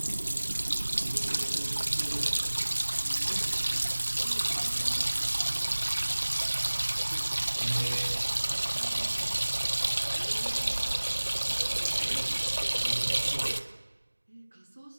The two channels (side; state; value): both; inverted; correlation -1.00